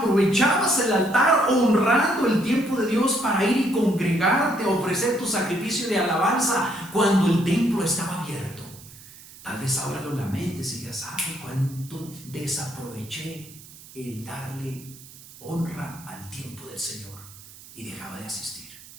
el altar honrando el tiempo de Dios para ir y congregarte a ofrecer tu sacrificio de alabanza cuando el templo estaba abierto. Tal vez ahora lo lamentes y digas: ay, cuánto desaproveché el darle honra al tiempo del Señor y dejaba de asistir.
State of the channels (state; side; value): noise; right; hiss, 19 dB below the sound